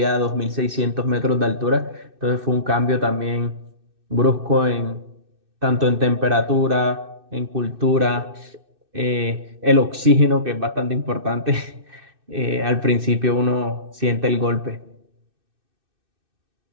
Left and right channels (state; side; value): late; left; 2.6 ms